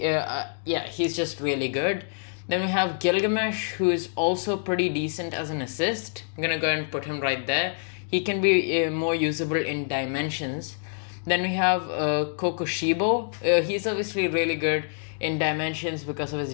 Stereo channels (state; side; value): silent; right; digital silence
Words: just really good. Then we have Gilgamesh, who is also pretty decent as an assist. I'm gonna go ahead and put him right there. He can be more usable in Dimensions. Then we have Kokushibo. He's obviously really good in Dimensions because of his